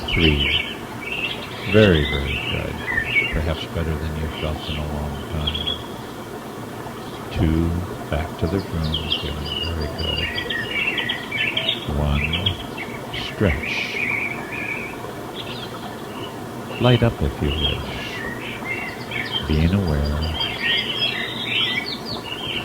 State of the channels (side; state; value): both; identical; correlation 1.00